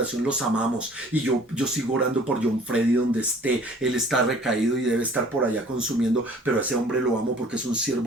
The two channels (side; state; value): both; normal; correlation 0.52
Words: los amamos. Y yo sigo orando por John Freddy donde esté. Él está recaído y debe estar por allá consumiendo, pero a ese hombre lo amo porque es un